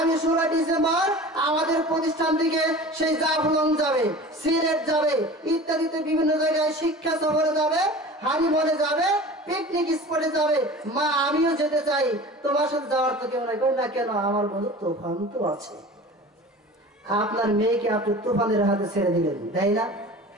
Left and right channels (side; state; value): both; normal; correlation 0.38